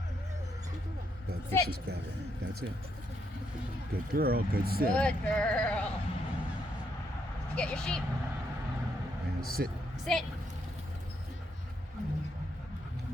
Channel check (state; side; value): normal; both; correlation 0.77